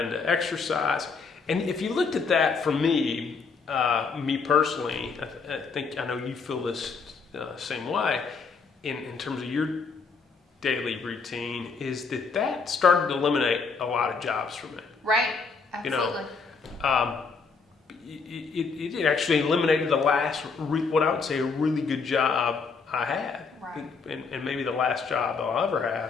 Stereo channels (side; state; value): right; quieter; 4.9 dB